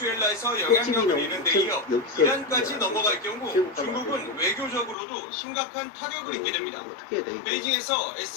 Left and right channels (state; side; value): drops out; right; at 5.0 s